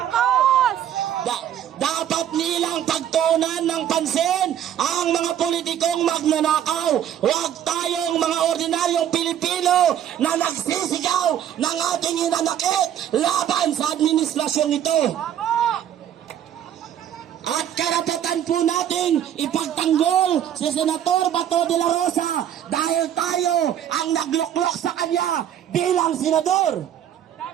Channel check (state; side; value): quieter; left; 10.4 dB